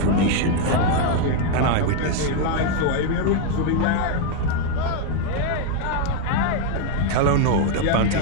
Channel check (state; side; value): different; both; correlation 0.00